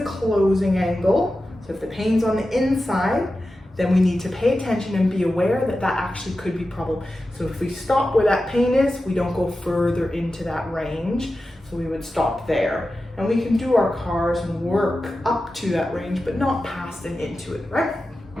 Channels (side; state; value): both; normal; correlation 0.93